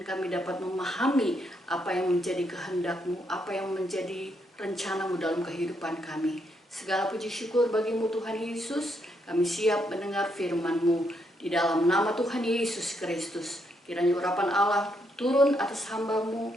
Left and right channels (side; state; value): both; normal; correlation 0.76